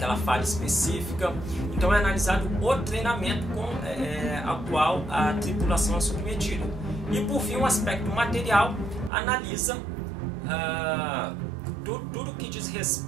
falha específica. Então é analisado o treinamento ao qual a tripulação é submetida. E por fim, o aspecto material analisa tudo que diz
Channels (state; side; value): drops out; left; at 9.1 s